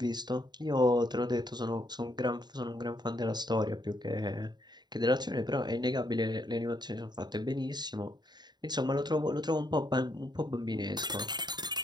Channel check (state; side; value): late; left; 0.21 ms